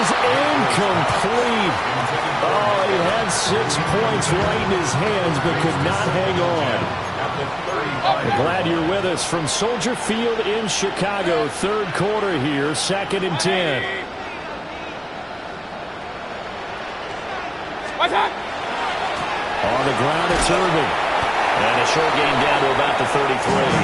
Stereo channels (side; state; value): both; identical; correlation 1.00